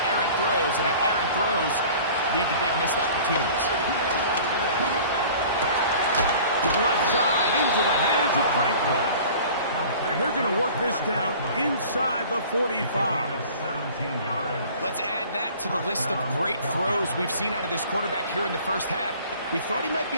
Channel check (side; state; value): both; inverted; correlation -0.46